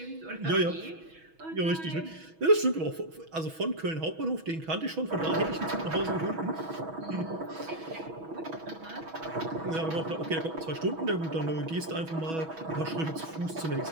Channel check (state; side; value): late; left; 6.2 ms